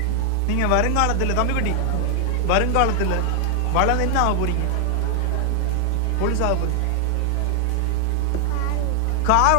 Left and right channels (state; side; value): different; both; correlation 0.00